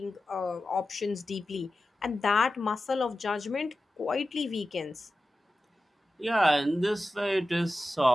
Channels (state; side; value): normal; both; correlation 0.93